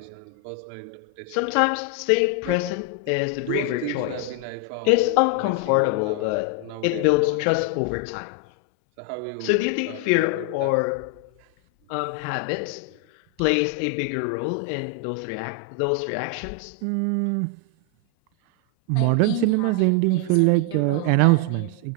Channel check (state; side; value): different; both; correlation 0.00